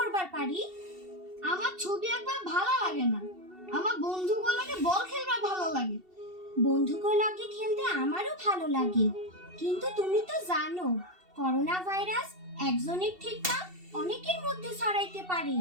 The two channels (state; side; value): late; left; 2.7 ms